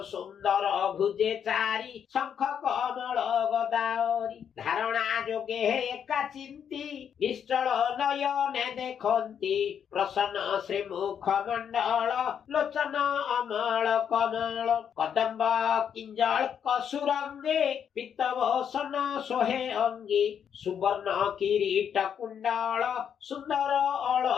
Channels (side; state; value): right; quieter; 8.2 dB